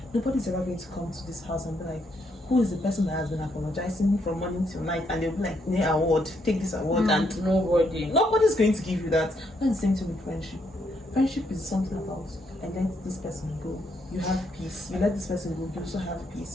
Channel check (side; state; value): both; normal; correlation 0.75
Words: nobody's ever going to come to this house and be like, who is the person that has been apologizing from morning till night? And they'll be like, yeah, award, take this award. And nobody's going to give you that. That's the same thing with friendship. Friendship is something about, I let this person go, you have peace. You let this person go, you also have